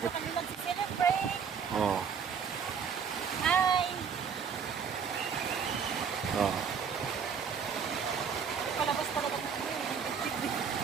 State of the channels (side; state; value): left; quieter; 6.8 dB